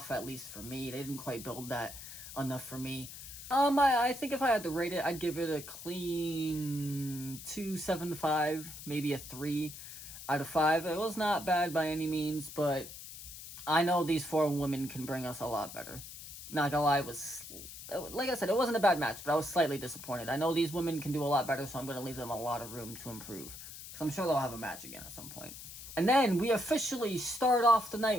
at least for me. They didn't quite build that enough for me. I think if I had to rate it, I'd give it a clean 2.75, maybe a 3 out of 5. It was not bad by any means, but I know these four women can bring us a lot better. Not gonna lie, like I said, it wasn't a bad match, but I was slightly disappointed. I know these women can do a lot better, so I'm going to leave them a lot of room to improve, because I'm sure they'll have a match again at some point. And then we officially start off the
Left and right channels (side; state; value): left; noise; hiss, 12 dB below the sound